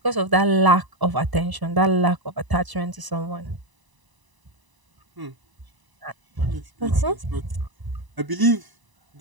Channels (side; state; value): left; late; 1.0 ms